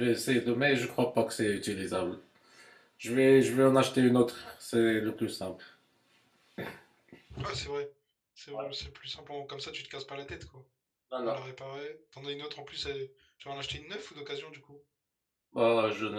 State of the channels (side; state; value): both; identical; correlation 1.00